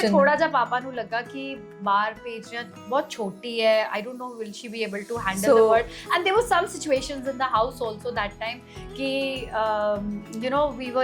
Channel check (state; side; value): identical; both; correlation 1.00